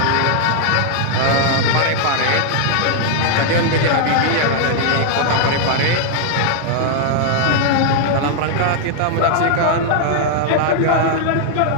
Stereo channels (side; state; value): both; different; correlation 0.00